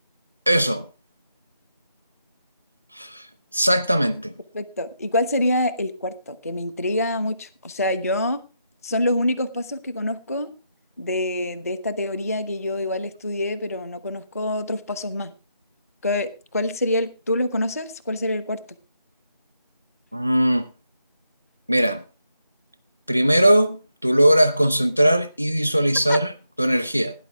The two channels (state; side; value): inverted; both; correlation -0.83